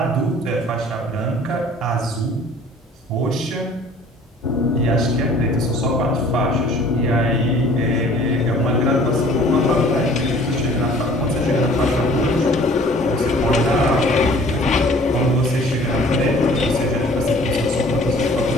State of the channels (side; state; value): both; normal; correlation 0.51